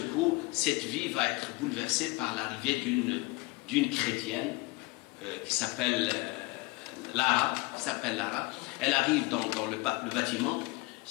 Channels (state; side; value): quieter; right; 23.5 dB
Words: coup, cette vie va être bouleversée par l'arrivée d'une chrétienne qui s'appelle Lara. Elle arrive dans le bâtiment.